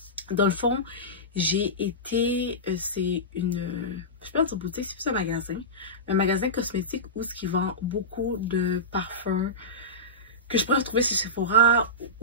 Dans le fond, j'ai été, c'est une, je peux dire boutique, c'est plus un magasin cosmétique où ce qui vend beaucoup de parfums que je pourrais trouver chez Sephora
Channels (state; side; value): normal; both; correlation -0.17